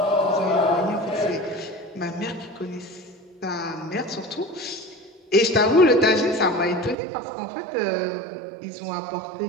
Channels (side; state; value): left; drops out; at 7.0 s